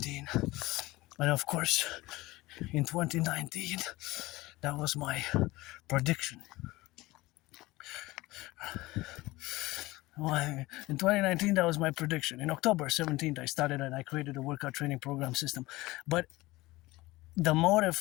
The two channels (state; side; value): quieter; right; 19.7 dB